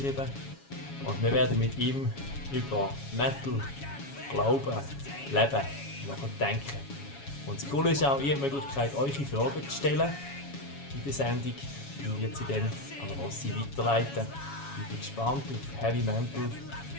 Und wir werden mit ihm über Metal, Glauben, Leben nachdenken. Und das Coole ist auch, ihr habt die Möglichkeit, eure Fragen zu stellen in der Sendung. Ich werde sie dann an Rossi weiterleiten. Ich bin gespannt auf Heavy Mental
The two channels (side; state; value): right; late; 7.2 ms